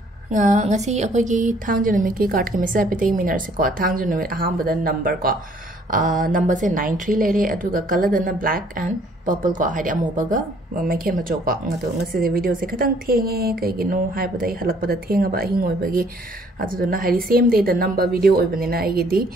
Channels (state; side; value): normal; both; correlation 0.61